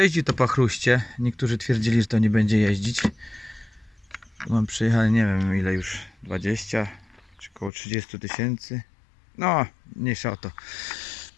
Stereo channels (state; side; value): drops out; right; at 7.7 s